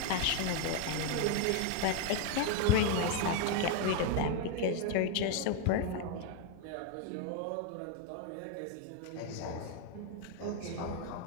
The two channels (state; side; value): different; both; correlation 0.01